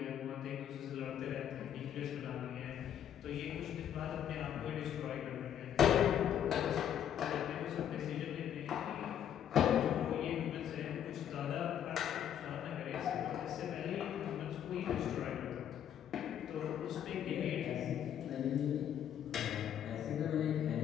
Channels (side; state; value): right; quieter; 9.8 dB